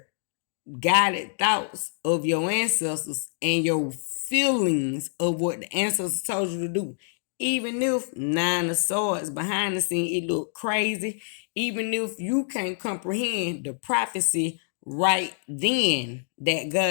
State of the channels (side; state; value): right; silent; digital silence